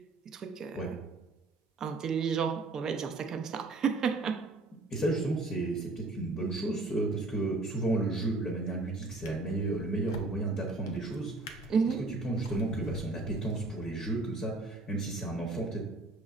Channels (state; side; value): quieter; left; 3.2 dB